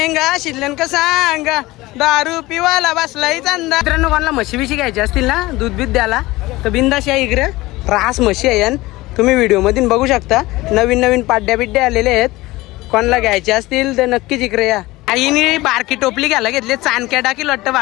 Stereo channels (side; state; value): right; quieter; 19.6 dB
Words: शिल्लन का सांगा, दारू पिवाला बसलाय चांदा. मित्रांनो कोणाला म्हशी बिशी घ्यायची असतील ना, दूध बीत द्याला तर बिंदास या इकडे. रास म्हशी आहे तुम्ही व्हिडिओ मधून बघू शकता. नवीन नवीन पाड्या बिड्या आलेले आहेत. कोणाला घ्यायचे असतील तर नक्कीच इकडे या. आईने बारकी टोपली घ्यायला घेतली, चाणक्या टाकी लट्ट